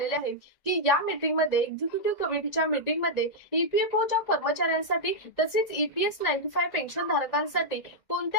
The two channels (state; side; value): late; right; 1.9 ms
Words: आहेत की या मीटिंग मध्ये एक्झिक्युटिव्ह कमिटीच्या मीटिंग मध्ये ईपीएफओच्या कर्मचाऱ्यांसाठी तसेच ईपीएस 95 पेन्शन धारकांसाठी